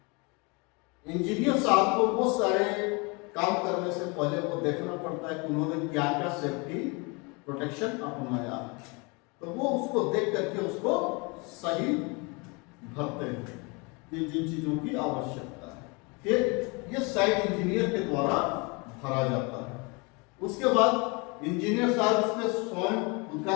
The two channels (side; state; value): right; quieter; 29.5 dB